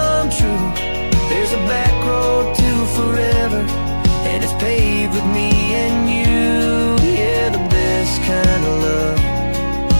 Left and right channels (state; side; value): inverted; both; correlation -1.00